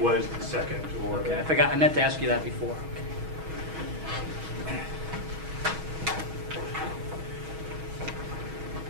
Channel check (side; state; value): left; late; 6.3 ms